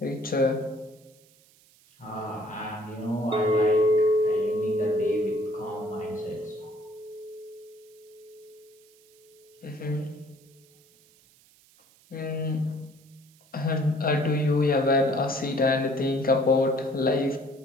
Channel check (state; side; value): noise; right; hiss, 29 dB below the sound